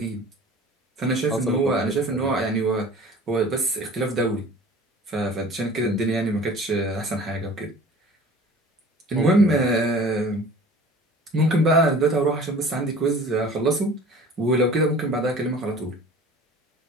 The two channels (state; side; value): normal; both; correlation 0.44